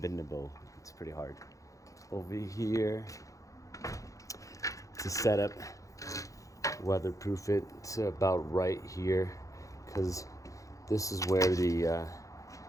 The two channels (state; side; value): late; right; 0.16 ms